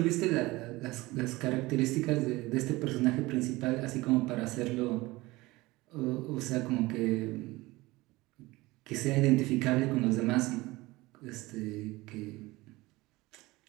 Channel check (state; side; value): quieter; left; 20.6 dB